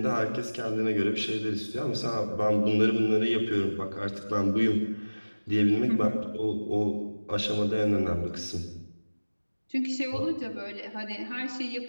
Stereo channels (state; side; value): inverted; both; correlation -1.00